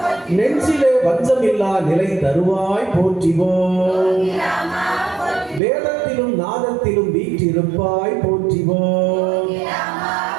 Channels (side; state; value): left; drops out; at 5.6 s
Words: நெஞ்சிலே வஞ்சமில்லா நிலை தருவாய் போற்றிவோம். வேதத்திலும் நாதத்திலும் வீற்றிருப்பாய் போற்றிவோம்.